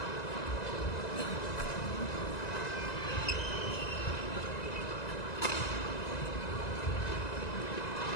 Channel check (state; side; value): late; right; 1.9 ms